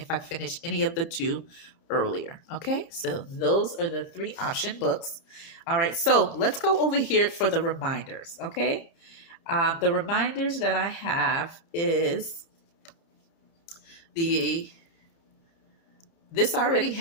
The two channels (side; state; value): right; late; 30 ms